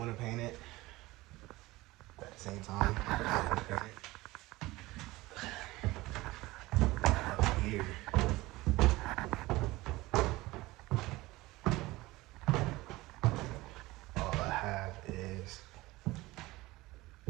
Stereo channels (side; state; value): left; quieter; 19.7 dB